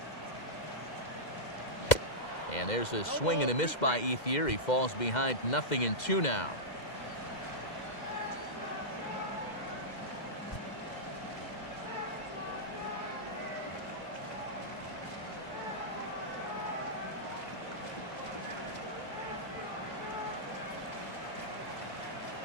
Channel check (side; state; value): right; late; 2.1 ms